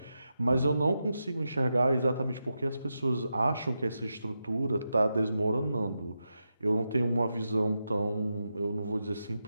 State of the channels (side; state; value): both; inverted; correlation -0.88